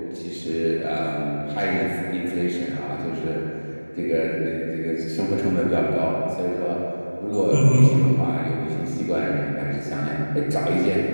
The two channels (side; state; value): both; inverted; correlation -1.00